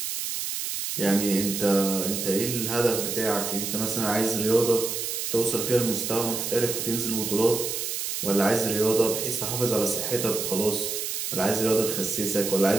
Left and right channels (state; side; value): noise; right; hiss, 3 dB below the sound